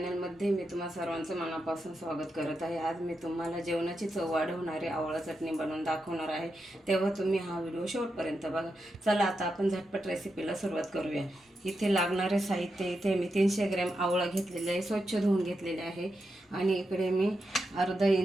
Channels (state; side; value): normal; both; correlation 0.86